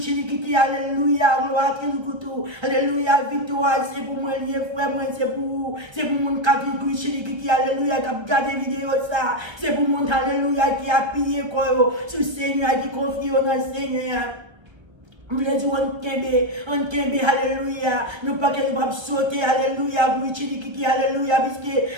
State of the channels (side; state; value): left; late; 1.3 ms